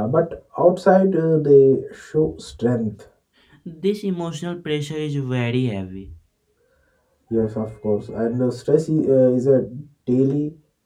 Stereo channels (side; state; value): both; identical; correlation 1.00